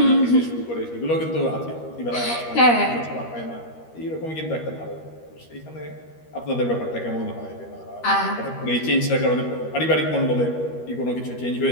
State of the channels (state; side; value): late; right; 13 ms